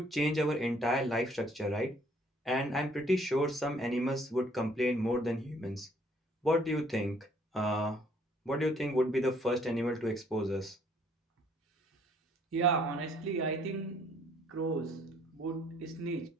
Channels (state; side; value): normal; both; correlation 0.62